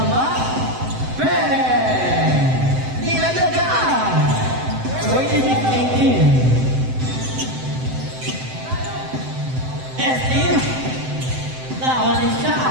Pere. Nilagdagan. 26-18. ST. Lawan ni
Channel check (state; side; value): late; left; 7.8 ms